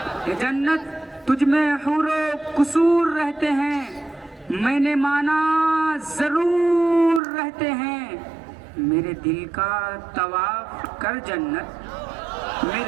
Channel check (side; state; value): left; drops out; at 7.2 s